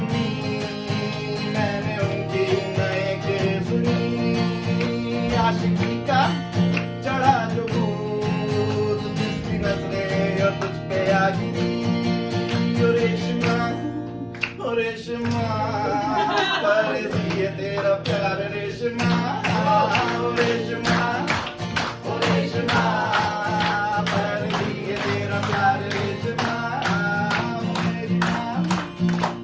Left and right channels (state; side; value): identical; both; correlation 1.00